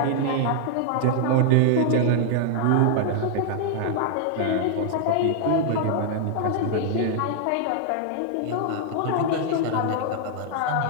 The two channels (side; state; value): both; different; correlation -0.01